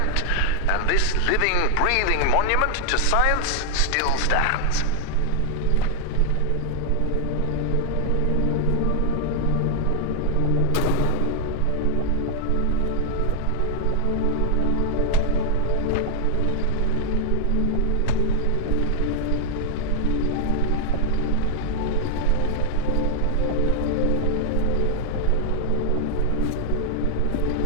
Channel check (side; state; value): both; different; correlation 0.00